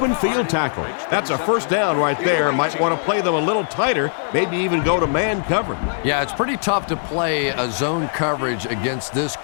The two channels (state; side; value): silent; right; digital silence